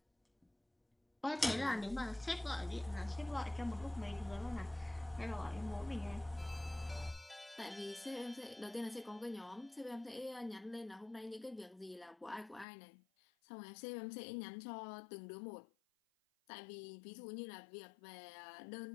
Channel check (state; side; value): drops out; right; at 12.7 s